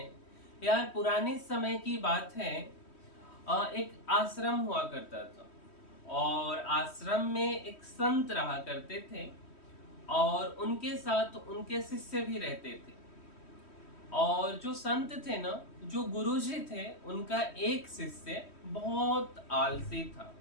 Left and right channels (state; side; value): late; right; 3.1 ms